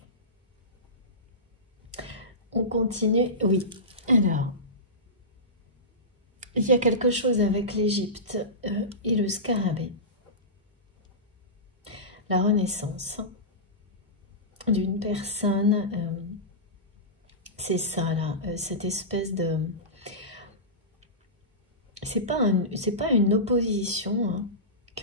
On continue, oui. Alors, il y a quelque chose avec l'Égypte et le scarabée. La renaissance d'une personne, c'est ça là, cette espèce de... C'est pas une opposition hein,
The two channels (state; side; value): normal; both; correlation -0.19